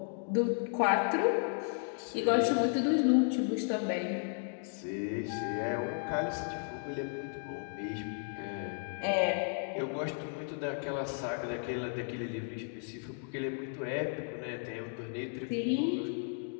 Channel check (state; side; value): silent; right; 55 dB below the other